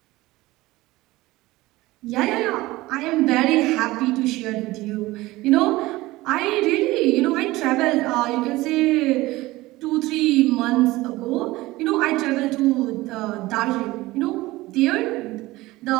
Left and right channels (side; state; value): left; quieter; 19.0 dB